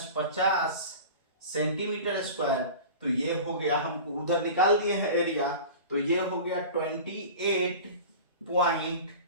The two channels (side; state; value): both; inverted; correlation -0.36